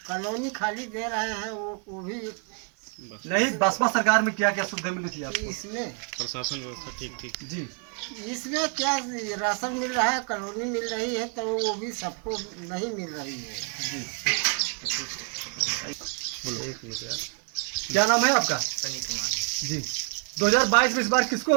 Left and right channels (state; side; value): quieter; left; 37.4 dB